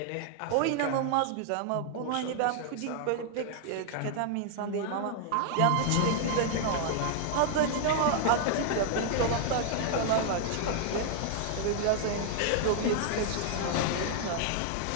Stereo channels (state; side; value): different; both; correlation 0.00